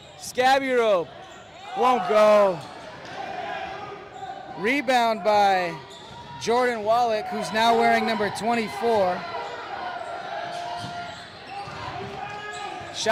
Scabby rope. Won't go. Rebound by Jordan Wallach, who's now wearing number 24.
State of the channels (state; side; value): identical; both; correlation 1.00